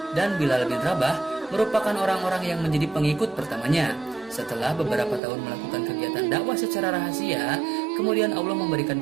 dan Bilal bin Rabah merupakan orang-orang yang menjadi pengikut pertamanya. Setelah beberapa tahun melakukan kegiatan dakwah secara rahasia, kemudian Allah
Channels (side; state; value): left; drops out; at 5.2 s